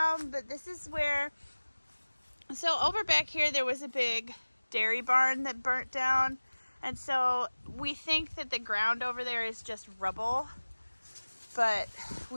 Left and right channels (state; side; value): inverted; both; correlation -1.00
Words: but this is where. So over back here, there was a big dairy barn that burnt down. And so we think that the ground over there is just rubble, but